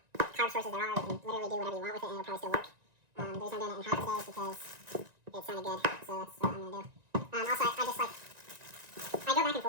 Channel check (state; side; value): late; left; 1.9 ms